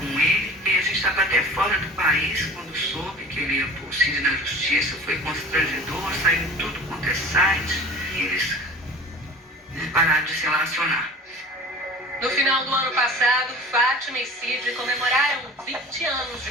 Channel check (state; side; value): normal; both; correlation 0.41